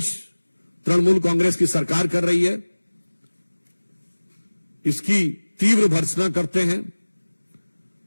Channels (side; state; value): both; inverted; correlation -1.00